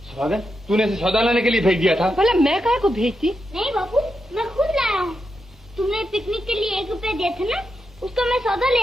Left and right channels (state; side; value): normal; both; correlation 0.86